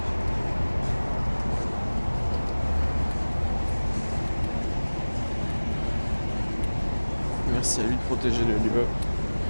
Merci à lui de protéger le lieu.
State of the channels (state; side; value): inverted; both; correlation -1.00